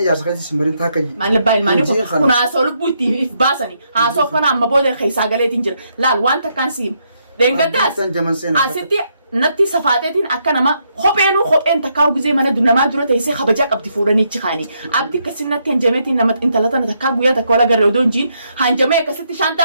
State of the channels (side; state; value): both; inverted; correlation -0.77